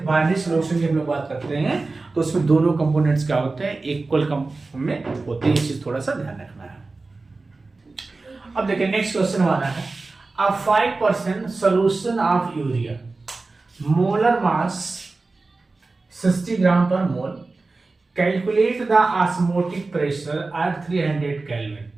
बाइनरी सॉल्यूशन की हम लोग बात करते हैं तो उसमें दोनों कंपोनेंट्स क्या होते हैं, इक्वल में होते हैं। ये चीज थोड़ा सा ध्यान रखना है। अब देखिए नेक्स्ट क्वेश्चन हमारा है, a 5% solution of urea, molar mass 60 gram per mole, calculate the osmotic pressure at 300 kelvin.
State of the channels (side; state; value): left; quieter; 3.6 dB